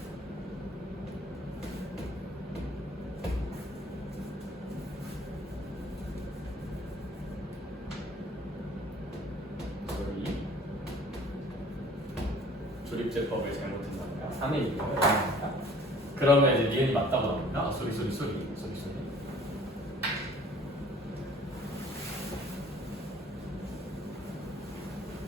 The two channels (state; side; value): normal; both; correlation 0.52